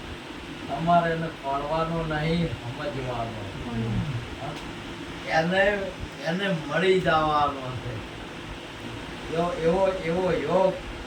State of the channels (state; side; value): identical; both; correlation 1.00